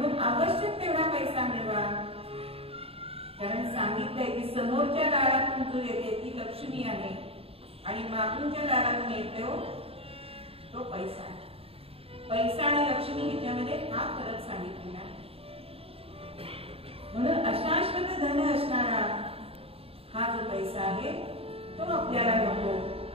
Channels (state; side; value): late; left; 0.28 ms